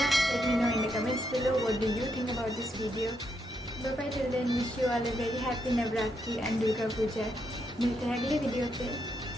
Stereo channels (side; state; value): both; normal; correlation 0.79